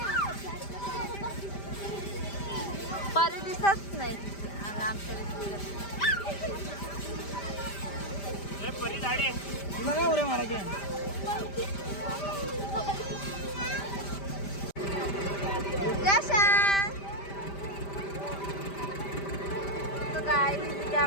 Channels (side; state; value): right; late; 5.1 ms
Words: परी दिसत नाही आमच्या काय तिथे